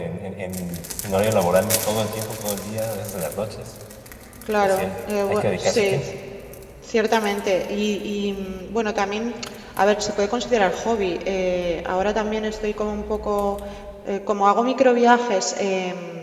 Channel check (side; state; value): both; identical; correlation 1.00